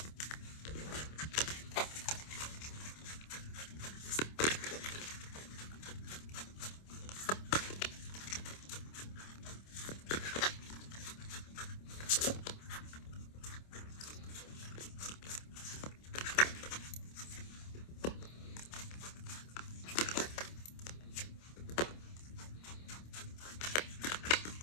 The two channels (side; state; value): right; late; 26 ms